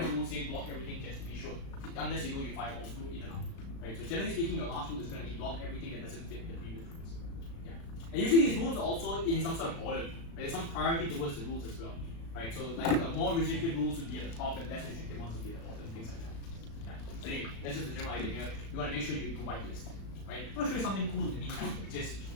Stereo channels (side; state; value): right; late; 36 ms